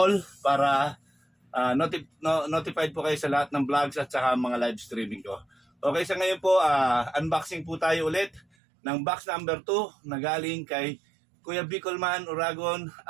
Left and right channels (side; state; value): left; drops out; at 8.5 s